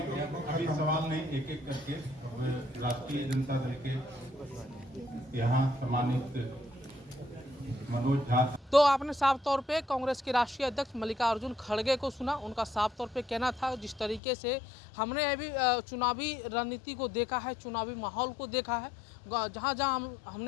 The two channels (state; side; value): drops out; right; at 14.2 s